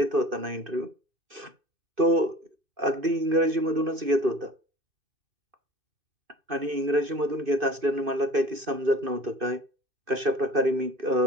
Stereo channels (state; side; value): late; left; 2.5 ms